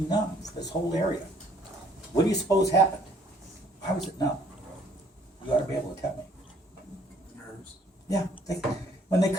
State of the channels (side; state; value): both; normal; correlation 0.61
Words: numb for this whole area. What do you suppose happened? Why was it numb? You ought to be able to tell me. Nerves. Yeah. When they